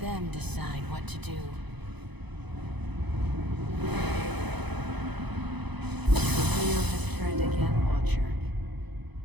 decide what to do. The wheel has turned again, Watcher.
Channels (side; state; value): left; late; 0.99 ms